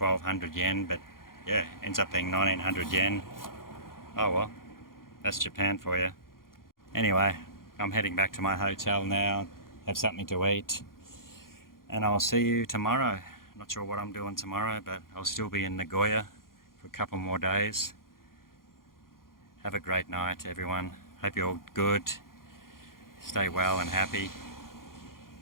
yen, but yeah, ends up being 1900 yen. Oh well, that's Japan for you. Anyway, I'm heading back to my hotel now, have something to eat, and I'll see you tomorrow. Not sure what I'm doing tomorrow, but I'll still be in Nagoya for a couple more days. Have a great night, everyone. Hope you're all good. Stay well and happy.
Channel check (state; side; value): late; right; 0.91 ms